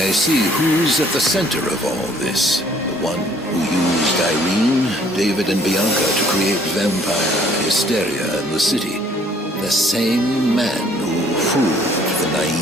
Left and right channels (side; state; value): both; normal; correlation 0.60